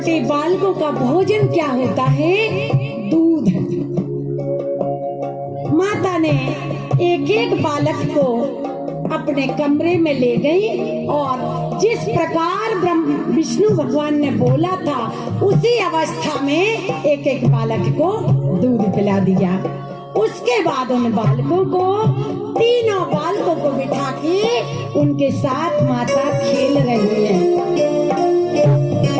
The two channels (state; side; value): identical; both; correlation 1.00